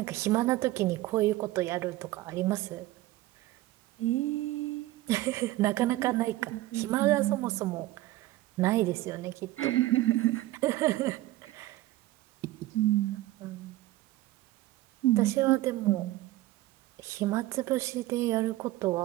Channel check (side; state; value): left; quieter; 16.6 dB